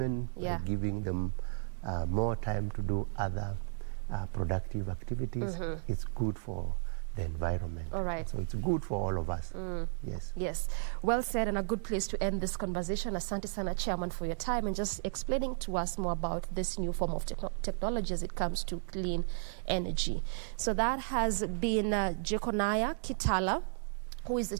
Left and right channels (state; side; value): silent; left; digital silence